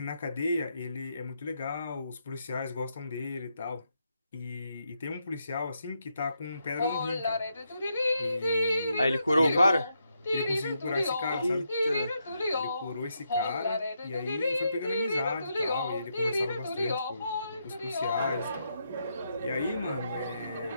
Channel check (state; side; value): inverted; both; correlation -0.81